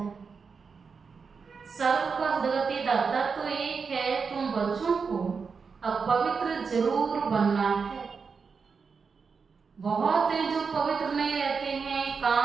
सर्व का गति दाता तो एक है, तुम बच्चों को अब पवित्र जरूर बनना है। बहुत है जो पवित्र नहीं रहते हैं,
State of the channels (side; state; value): left; quieter; 5.4 dB